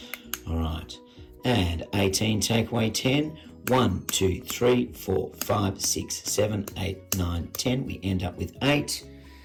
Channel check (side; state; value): both; identical; correlation 1.00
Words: All right. And 18 takeaway 10. 1, 2, 3, 4, 5, 6, 7, 8, 9, 10. We end up with 8.